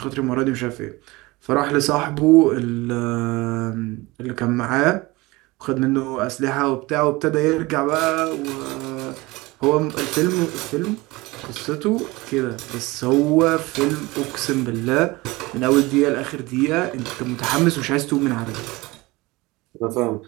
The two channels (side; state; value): left; quieter; 21.9 dB